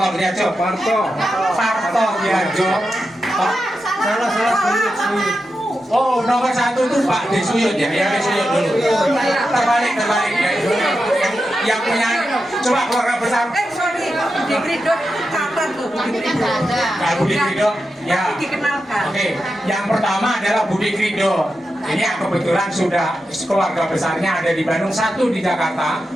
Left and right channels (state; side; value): normal; both; correlation 0.89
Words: Diarjo. Marto Diarjo. Salah. Oh, nomor 1 itu Pak Desuyut ya, Desuyut dulu. Terbalik ya. Yang punya, coba keluarga besar. Sorry, Budi Krido catat tuh, Budi Krido. Budi Krido, ya. Dikenalkan. Oke, yang pertama adalah Budi Krido. Ini yang kebetulan sudah keluarga besarnya ada di Bandung, 1 di Jakarta,